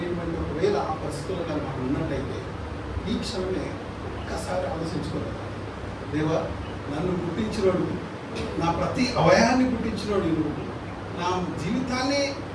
ఒకవేళ ఆ పరిస్థితుల్లో కానీ మనం ఉన్నట్టయితే ఈ క్షణమే ఒక్కసారి ఆలోచించుకోవాలి. దేవా, నన్ను పుట్టించినోడు, నా ప్రతి అవయాన్ని పుట్టించినోడు నువ్వు, నా జీవితాన్ని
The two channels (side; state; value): both; identical; correlation 1.00